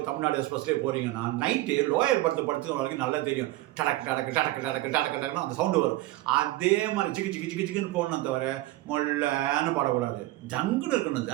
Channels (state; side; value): quieter; left; 17.2 dB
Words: தமிழ்நாடு எக்ஸ்பிரஸ்லேயோ போகிறீங்கன்னா நைட்டு லோயர் படுத்து வரைக்கும் நல்லா தெரியும். டடக்கு டடக்கு டடக்கு டடக்கு டடக்கு டக்குன்னு அந்த சவுண்டு வரும். அதே மாதிரி சிக்கு சிக்கு சிக்கு சிக்குன்னு போகணும் தவிர மொல்லன்னு பாடக்கூடாது. ஜங்குன்னு இருக்கணும்.